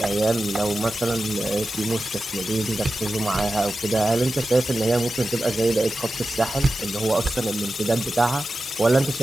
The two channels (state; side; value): normal; both; correlation 0.93